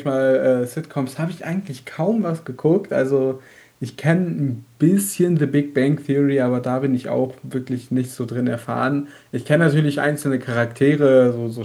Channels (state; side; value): identical; both; correlation 1.00